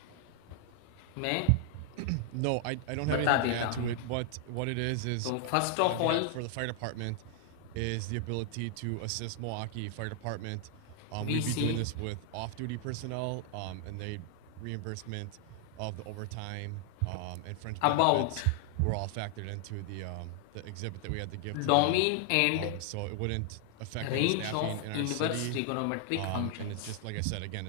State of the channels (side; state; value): both; different; correlation 0.00